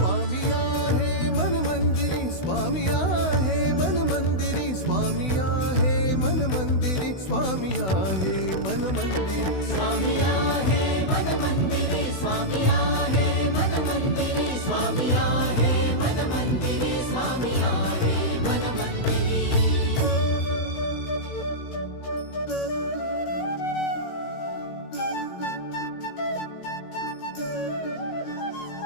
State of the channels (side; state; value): right; late; 16 ms